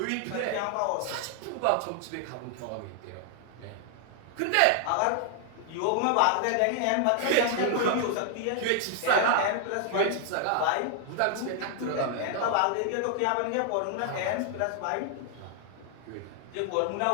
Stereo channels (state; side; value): different; both; correlation 0.00